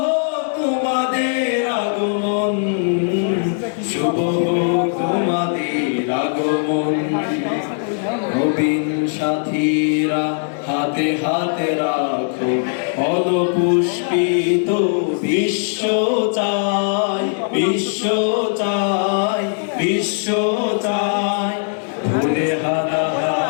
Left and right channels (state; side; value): silent; right; digital silence